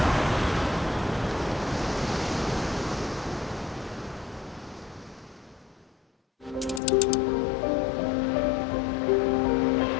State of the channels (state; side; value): drops out; right; at 6.8 s